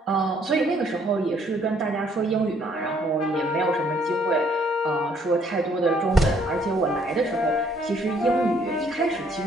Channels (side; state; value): both; normal; correlation 0.65